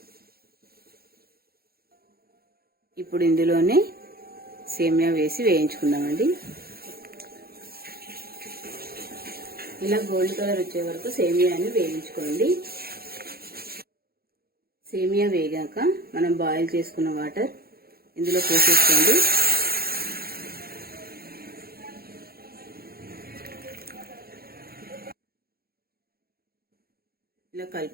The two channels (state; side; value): late; left; 0.44 ms